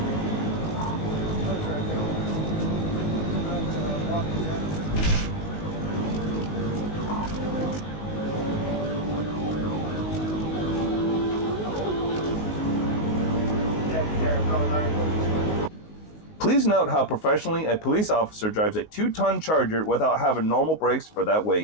Please note how professionally a police officer drives a 2-ton Charger without having normal brakes for that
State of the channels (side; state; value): right; late; 19 ms